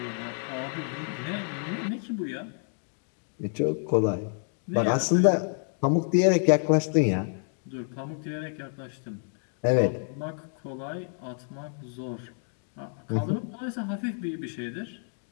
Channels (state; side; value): silent; right; 58 dB below the other